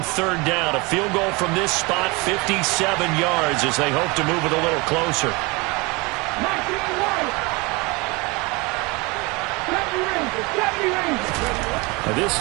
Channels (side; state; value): left; quieter; 26.3 dB